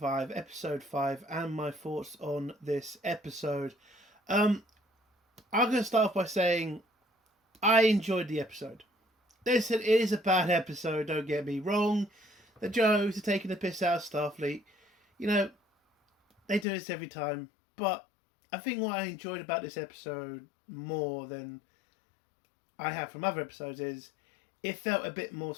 Episode 5, and my thoughts on this episode. I'm going to start off by saying I enjoyed the episode. Listen, it is a bad episode, don't get me wrong. The jokes are taking the piss out of Starfleet. You know, they do this every time. But I think what I enjoyed about this episode more than I have from other episodes is it felt a bit more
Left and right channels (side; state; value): right; drops out; at 16.7 s